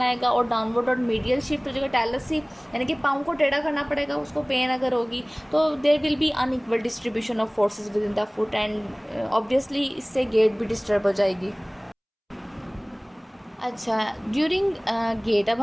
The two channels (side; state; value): both; identical; correlation 1.00